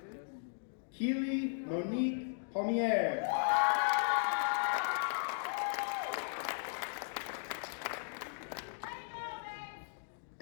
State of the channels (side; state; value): right; silent; digital silence